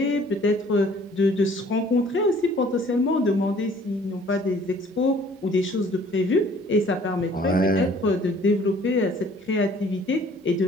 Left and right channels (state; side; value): normal; both; correlation 0.55